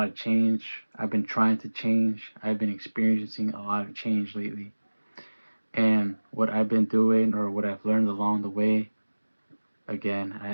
of change. I've been trying to change. I've been experiencing a lot of change lately. And what I've been doing or what I've learned along the way, again, I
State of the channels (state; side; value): inverted; both; correlation -1.00